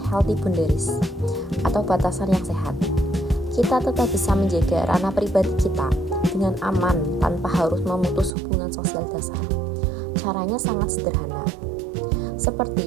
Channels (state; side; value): drops out; left; at 8.3 s